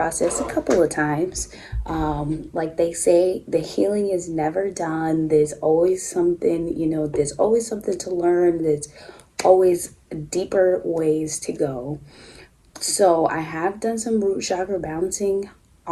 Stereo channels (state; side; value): identical; both; correlation 1.00